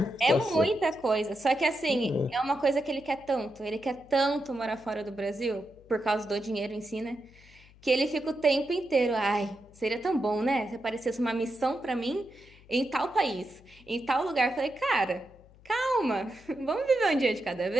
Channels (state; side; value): noise; left; hum, 25 dB below the sound